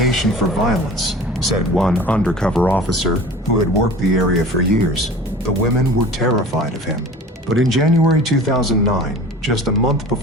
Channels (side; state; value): both; normal; correlation 0.40